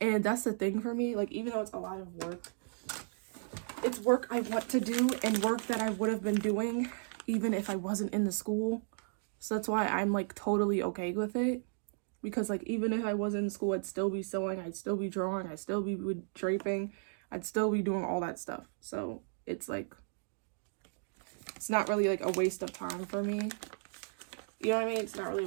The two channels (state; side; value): silent; left; digital silence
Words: And that's the thing for me. Like, even though it's a lot of work, it's work I want to do and work that I would have been doing even if I wasn't in the school. So that's why I'm like totally okay with it. Because like, even if I wasn't in school, I'd still be sewing, I'd still be drawing, I'd still be draping, I'd still be doing all that stuff. So it's like, it's not really like a waste of time for me. You know what I mean? It's not really a